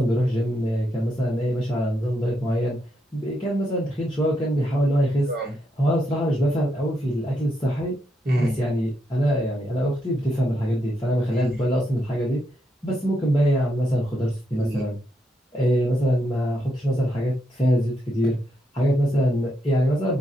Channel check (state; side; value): normal; both; correlation 0.81